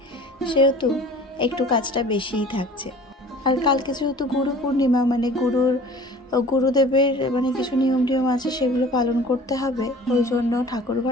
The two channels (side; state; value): both; normal; correlation 0.45